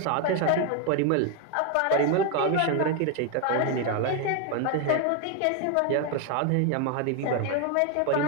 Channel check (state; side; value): different; both; correlation 0.01